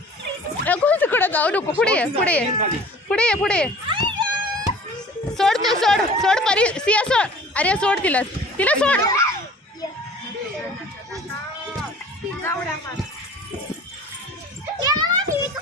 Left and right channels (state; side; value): normal; both; correlation 0.46